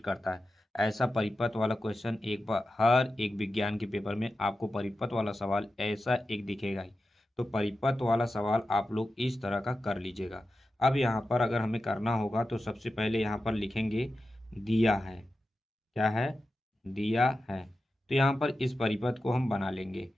करता है। ऐसा परिपथ वाला क्वेश्चन एक बार हर एक विज्ञान के पेपर में आपको परिपथ वाला सवाल ऐसा एक दिखेगा ही। तो परिपथ वाला सवाल आप लोग इस तरह का कर लीजिएगा। अब यहाँ पर अगर हमें करना होगा तो सबसे पहले यहाँ पर लिखेंगे दिया है। क्या है? दिया है। तो यहाँ पर इस परिपथ को हम बना लेंगे।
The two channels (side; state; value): both; normal; correlation 0.92